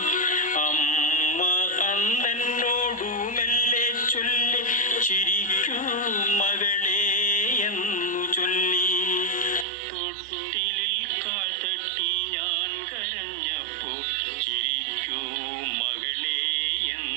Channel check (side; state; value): left; drops out; at 9.7 s